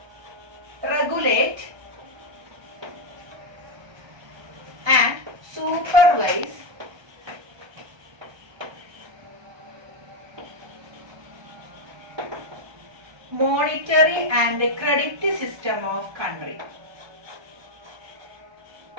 regulate and supervise monetary and credit system of country.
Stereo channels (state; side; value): late; left; 1.2 ms